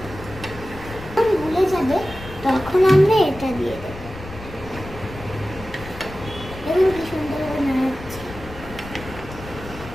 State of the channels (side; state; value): left; noise; rumble, 14 dB below the sound